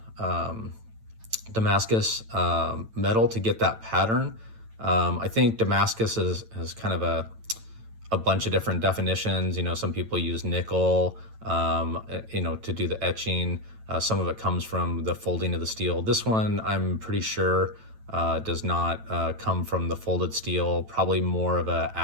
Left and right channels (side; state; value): left; late; 9.0 ms